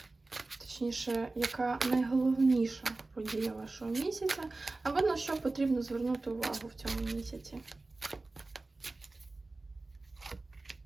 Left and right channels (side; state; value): left; quieter; 3.3 dB